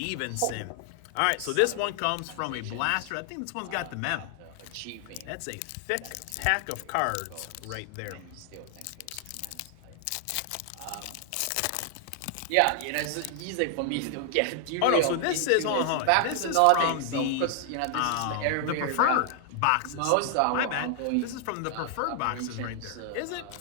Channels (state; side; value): different; both; correlation 0.00